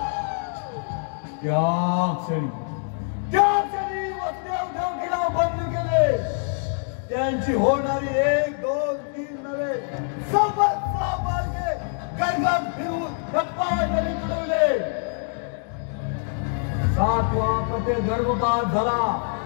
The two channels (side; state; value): right; silent; 62 dB below the other